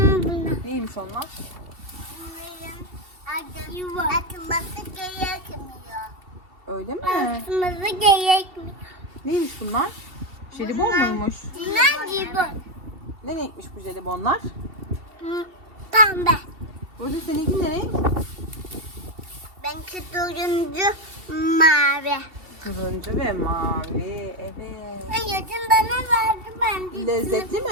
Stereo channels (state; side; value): late; left; 2.7 ms